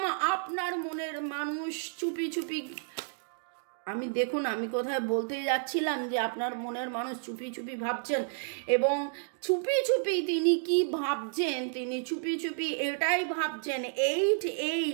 আপনার মনের মানুষ চুপি চুপি, আমি দেখুন আমি কোথায় বলতে যাচ্ছিলাম যে আপনার মনের মানুষ চুপি চুপি ভাবছেন, এবং চুপি চুপি তিনি কি ভাবছেন, তিনি চুপি চুপি এটাই ভাবছেন,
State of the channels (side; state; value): left; silent; digital silence